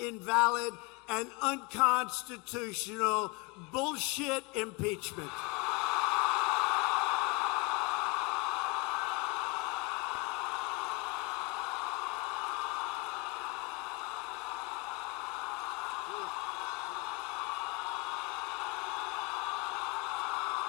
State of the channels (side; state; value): right; quieter; 26.3 dB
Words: and unconstitutional bullshit impeachment.